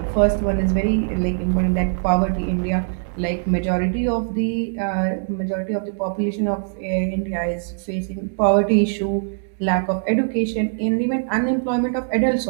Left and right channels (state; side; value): silent; left; digital silence